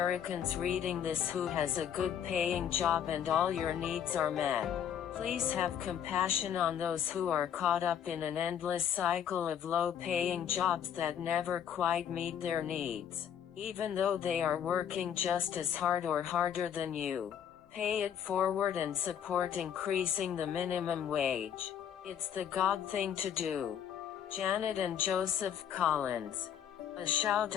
reading this who has a good paying job and all your needs are met, please have compassion on those who are caught up in an endless cycle of low-paying jobs that never quite meet their needs, even though they are working just as hard or harder than you. Pay it forward and support increasing the minimum wage. It's the God thing to do. Janet and Joseph Collins. A shout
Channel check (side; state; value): right; quieter; 9.0 dB